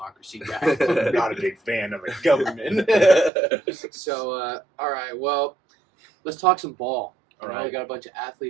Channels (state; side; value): drops out; left; at 3.3 s